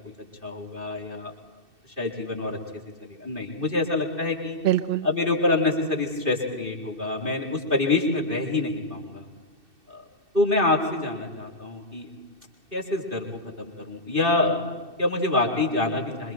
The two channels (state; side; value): late; left; 2.6 ms